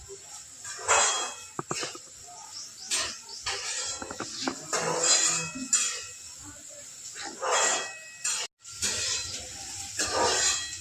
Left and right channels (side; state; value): both; identical; correlation 1.00